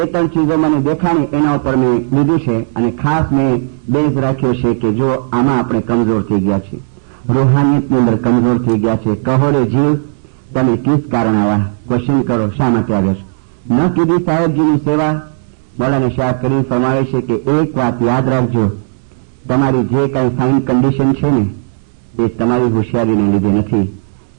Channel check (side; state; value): left; silent; digital silence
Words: ચીજો મને દેખાણી એના ઉપર મેં લીધું છે, અને ખાસ મેં બેઝ રાખ્યો છે કે જો આમાં આપણે કમજોર થઈ ગયા છે, રૂહાનિયતની અંદર કમજોર થઈ ગયા છે. કહોરે જીવ તમે કિસ કારણ આવા ક્વેશ્ચન કરો, શા માટે આવ્યો છો? ન કીધી સાહેબજીની સેવા. મૌલાના શાહ કરીમ ફરમાવે છે કે એક વાત યાદ રાખજો, તમારી જે કઈ ફાઇન કન્ડિશન છે ને એ તમારી હોશિયારીને લીધે નથી,